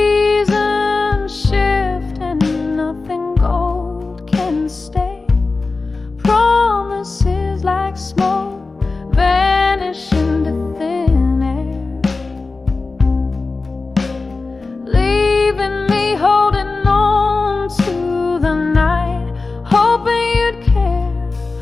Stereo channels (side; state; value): right; quieter; 3.8 dB